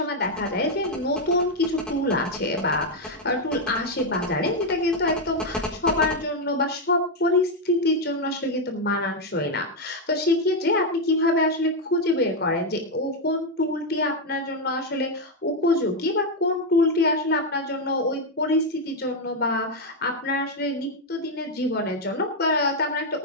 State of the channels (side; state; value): both; normal; correlation 0.03